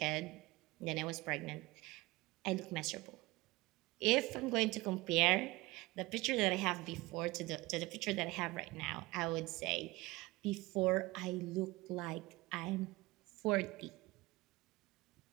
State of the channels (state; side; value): quieter; left; 21.5 dB